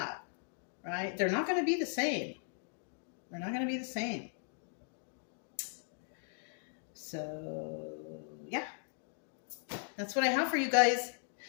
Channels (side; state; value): right; silent; 53 dB below the other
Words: right? They're not going to be the same. They're not going to be the same. So, yeah. That's what I have for you guys.